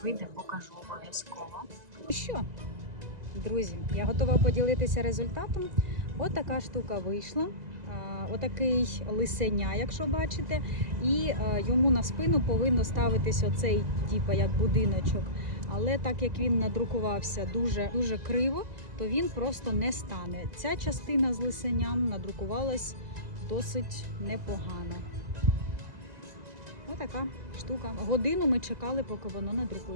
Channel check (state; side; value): late; left; 2.0 ms